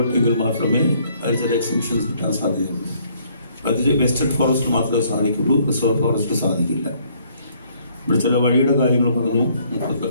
മാത്രമേ അതിന് ചില എക്സംഷൻസ് കിട്ടാൻ സാധ്യതയുള്ളൂ. അത് വെസ്റ്റേൺ ഫോറസ്റ്റ് മാത്രമേ സാധിക്കുള്ളൂ, റിസർവ് ഫോറസ്റ്റ് സാധിക്കില്ല. ഇവിടെ ചില വഴിയുടെ കാര്യങ്ങൾ പറഞ്ഞു.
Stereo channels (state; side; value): inverted; both; correlation -0.65